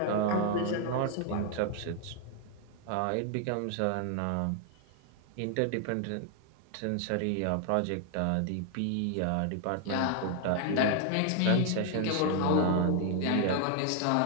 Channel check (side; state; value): both; different; correlation 0.00